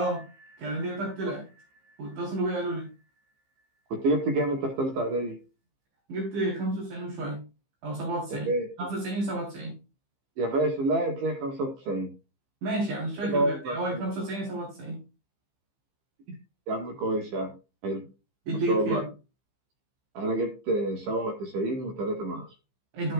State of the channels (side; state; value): left; late; 15 ms